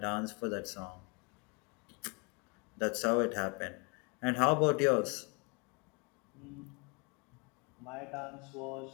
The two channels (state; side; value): quieter; right; 32.7 dB